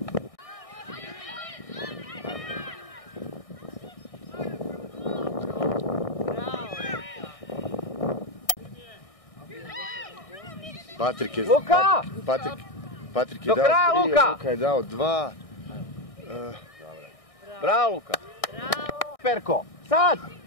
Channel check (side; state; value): right; late; 1.6 ms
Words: Patrik je... Luka! Patrik je dao 3, Luka je dao 2. Bravo, Luka! Bravo! Perko! Sad!